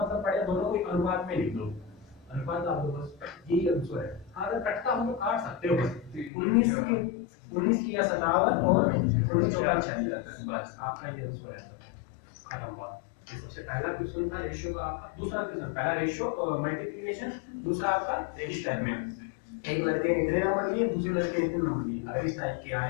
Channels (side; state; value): right; drops out; at 6.3 s